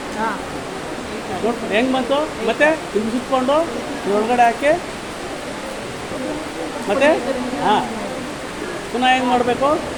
ಹಾಂ ನೋಡಿ ಹೆಂಗೆ ಬಂತು. ಮತ್ತೆ ಹಿಂಗೆ ಸುತ್ಕೊಂಡು ಒಳಗಡೆ ಹಾಕಿ ಮತ್ತೆ ಹಾಂ ಪುನಃ ಹೆಂಗೆ ಮಾಡಬೇಕು,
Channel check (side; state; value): both; identical; correlation 1.00